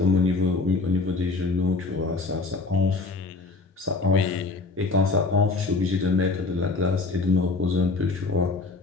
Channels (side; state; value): right; quieter; 3.7 dB